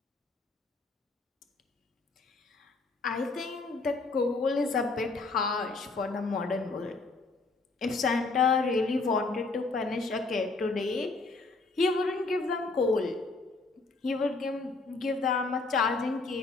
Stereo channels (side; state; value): right; quieter; 3.7 dB